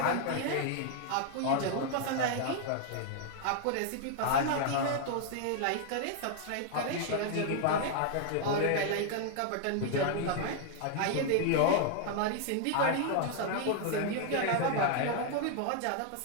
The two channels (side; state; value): both; different; correlation 0.00